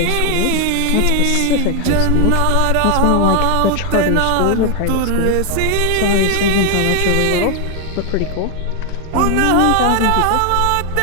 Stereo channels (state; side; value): different; both; correlation 0.00